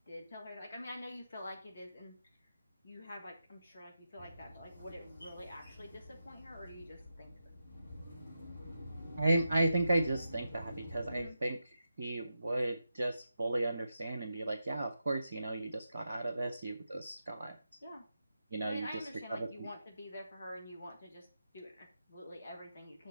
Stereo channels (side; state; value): both; inverted; correlation -0.88